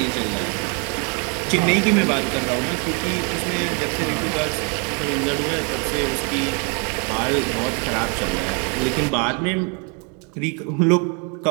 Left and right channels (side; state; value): left; quieter; 36.4 dB